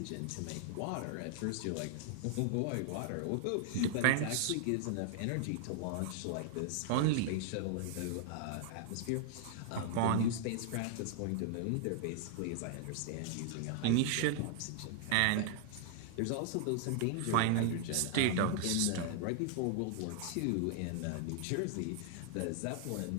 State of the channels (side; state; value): both; different; correlation 0.00